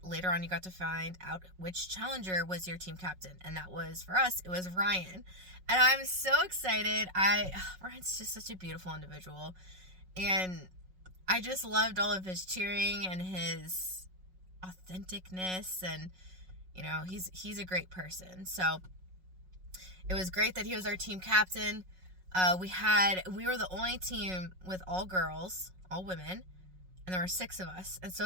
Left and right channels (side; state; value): left; late; 5.4 ms